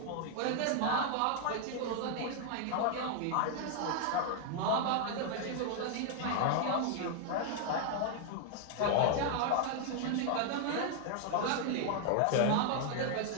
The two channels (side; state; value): both; different; correlation 0.00